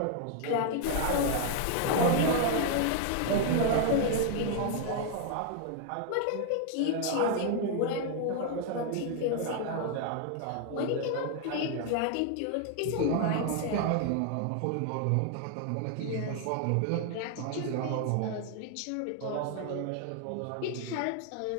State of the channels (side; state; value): both; different; correlation 0.00